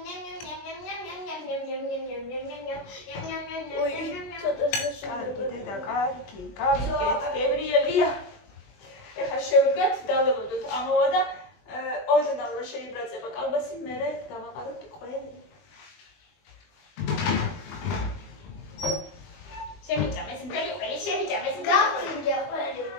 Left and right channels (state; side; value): late; right; 20 ms